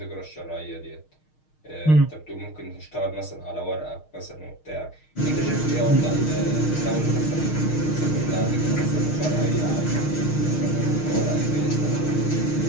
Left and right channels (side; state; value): right; late; 6.4 ms